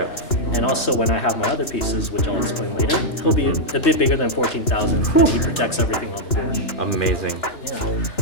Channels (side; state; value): right; late; 2.9 ms